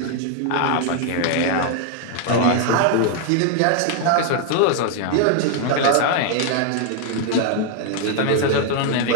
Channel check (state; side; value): different; both; correlation 0.00